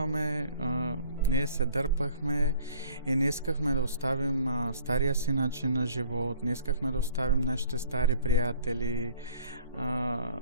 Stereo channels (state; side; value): inverted; both; correlation -0.53